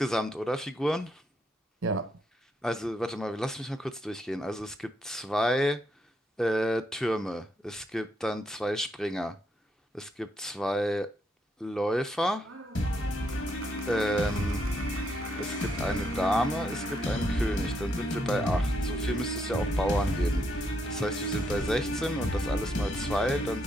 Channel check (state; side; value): normal; both; correlation 0.77